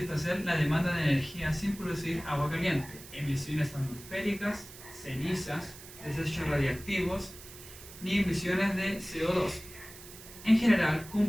la demanda de energía sin producir agua caliente, emisiones atmosféricas, cenizas, desechos radiactivos, ni emisiones de CO2. En general,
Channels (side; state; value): right; noise; hiss, 16 dB below the sound